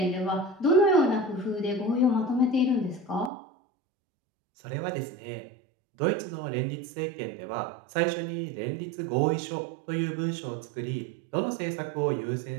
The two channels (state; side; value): drops out; left; at 3.3 s